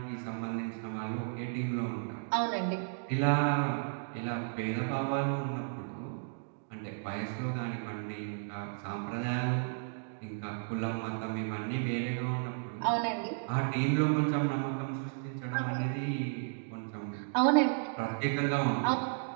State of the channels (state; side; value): silent; left; digital silence